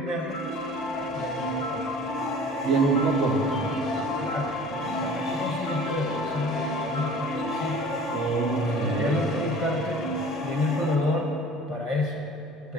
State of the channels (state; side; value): normal; both; correlation 0.45